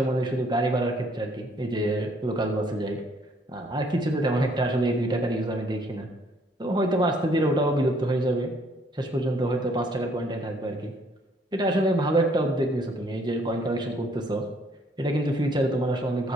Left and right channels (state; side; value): normal; both; correlation 0.64